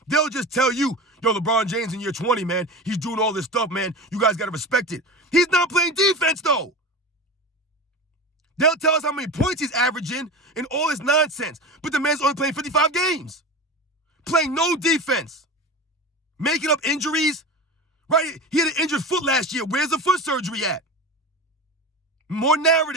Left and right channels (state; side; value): normal; both; correlation 0.28